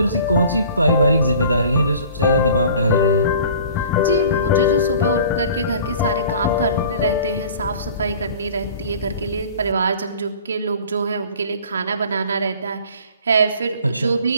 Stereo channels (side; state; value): both; inverted; correlation -0.47